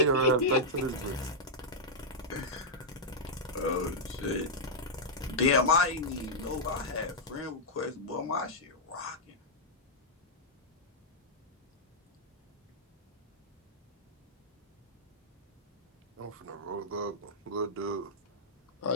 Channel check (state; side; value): normal; both; correlation -0.08